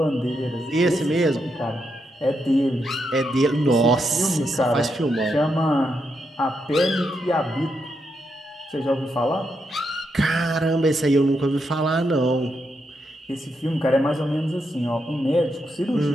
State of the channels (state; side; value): normal; both; correlation 0.82